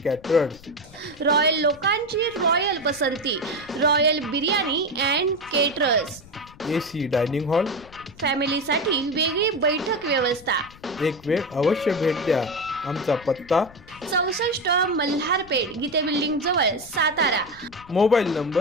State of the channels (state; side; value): noise; left; rumble, 22 dB below the sound